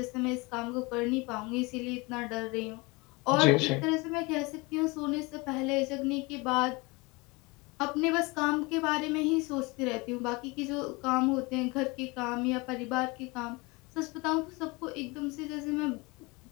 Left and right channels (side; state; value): right; quieter; 25.8 dB